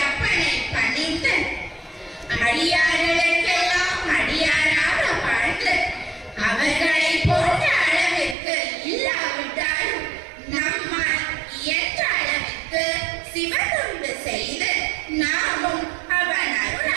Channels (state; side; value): drops out; left; at 8.3 s